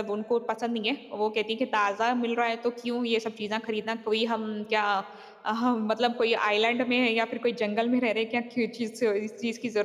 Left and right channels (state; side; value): identical; both; correlation 1.00